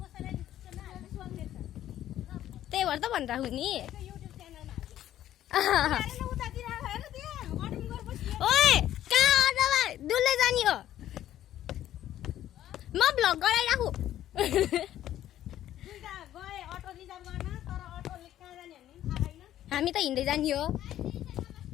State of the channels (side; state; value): right; quieter; 12.3 dB